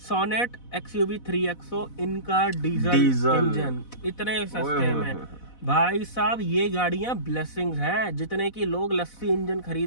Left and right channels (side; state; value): right; late; 4.1 ms